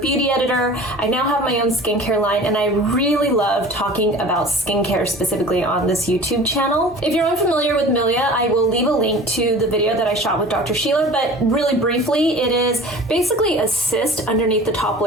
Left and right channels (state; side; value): normal; both; correlation 0.41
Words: editor. I now have my own skincare line, and I really love talking about skincare specifically on this YouTube channel. If you're unfamiliar with Milia, I will leave a link to the video that I shot with Dr. Sheila, but really briefly, it is basically a cyst underneath the top